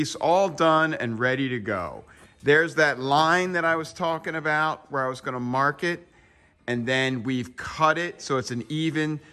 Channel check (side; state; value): both; identical; correlation 1.00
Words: all done and ready to go. There's that line that I was talking about where I was gonna mark it, and then we've cut it so it's an even